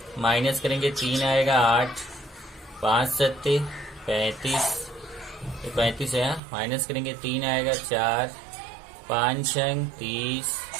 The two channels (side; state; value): left; drops out; at 6.4 s